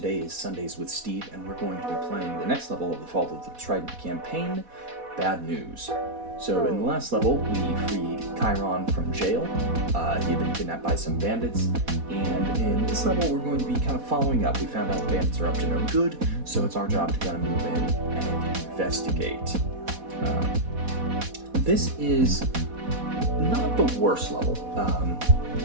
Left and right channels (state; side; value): late; left; 4.1 ms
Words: is Sundays with Steve, and we're going to be playing the next level of the Fall of the Trident campaign, Bad News. So in the last level, we freed Chiron from jail. He had been kidnapped by some bandits, and in this level we're going to be kind of following up. We found out the bandits are up to no good, so it's our job to kind of move in and investigate. This is not the worst level.